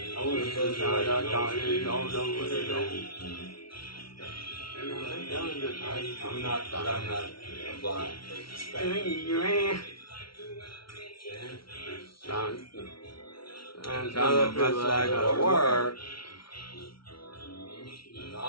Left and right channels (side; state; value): right; late; 0.74 ms